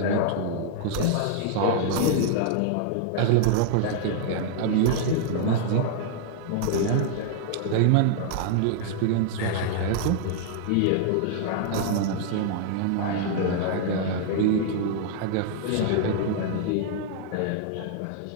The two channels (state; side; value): different; both; correlation -0.01